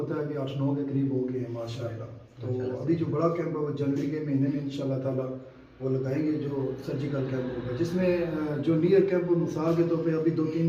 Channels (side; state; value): both; identical; correlation 1.00